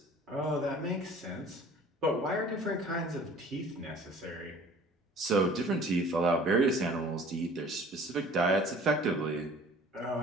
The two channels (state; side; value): normal; both; correlation 0.49